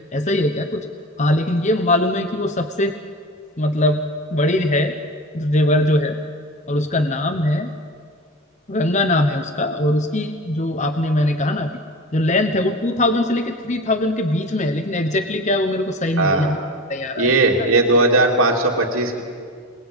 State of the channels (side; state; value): both; normal; correlation 0.30